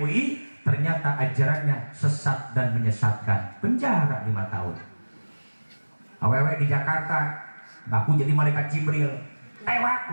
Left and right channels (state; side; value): inverted; both; correlation -1.00